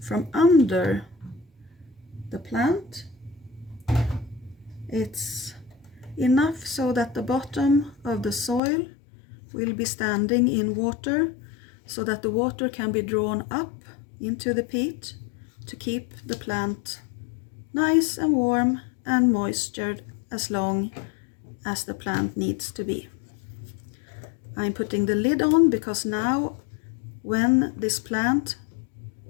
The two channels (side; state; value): right; drops out; at 8.6 s